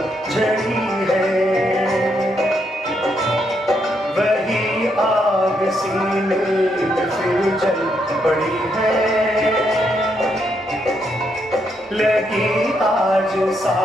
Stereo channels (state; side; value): normal; both; correlation 0.77